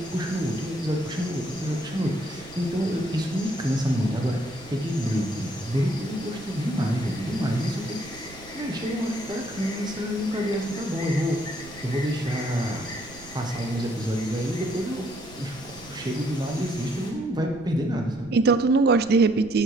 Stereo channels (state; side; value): noise; right; rumble, 20 dB below the sound